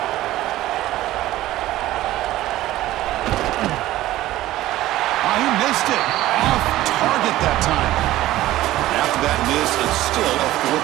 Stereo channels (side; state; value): left; quieter; 15.5 dB